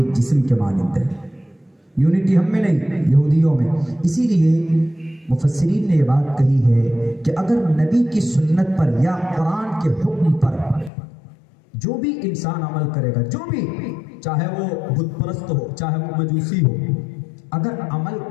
جسم کے مانند ہے۔ یونٹی ہم میں نہیں، یہودیوں میں۔ اسی لیے مفسرین نے یہ بات کہی ہے کہ اگر نبی کی سنت پر یا قرآن کے حکم پر جو بھی انسان عمل کرے گا، جو بھی، چاہے وہ بت پرست ہو، چاہے وہ مجوسی ہو، اگر عمل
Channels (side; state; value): right; drops out; at 10.9 s